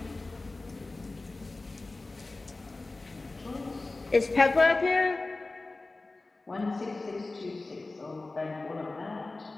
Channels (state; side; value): quieter; right; 3.3 dB